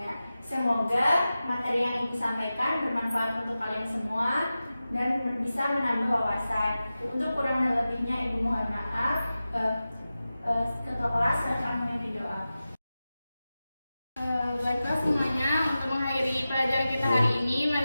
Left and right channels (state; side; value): inverted; both; correlation -0.94